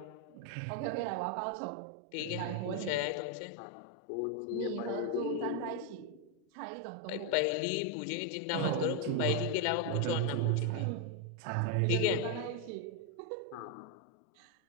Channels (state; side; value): different; both; correlation 0.01